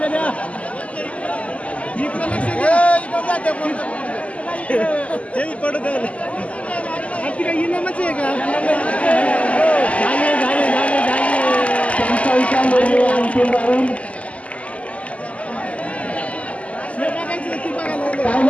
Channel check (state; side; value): late; right; 0.066 ms